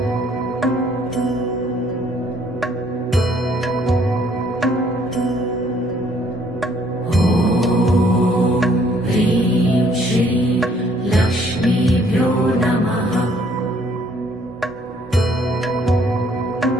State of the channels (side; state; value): both; normal; correlation 0.63